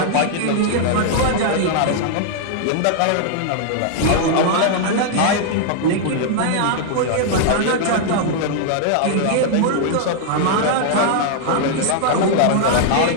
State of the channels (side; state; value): both; different; correlation -0.01